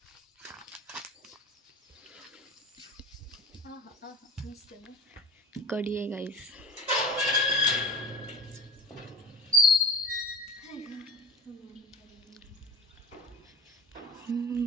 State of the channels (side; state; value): both; normal; correlation 0.34